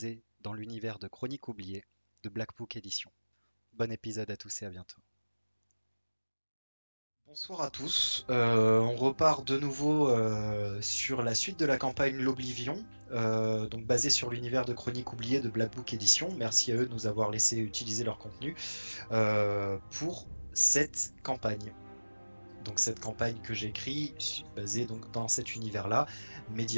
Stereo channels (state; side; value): inverted; both; correlation -1.00